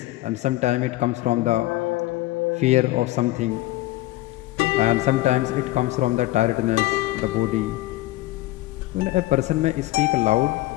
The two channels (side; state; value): right; quieter; 17.8 dB